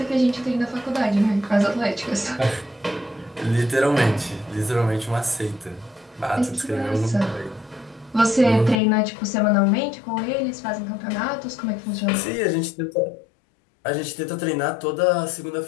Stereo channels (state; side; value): drops out; right; at 8.8 s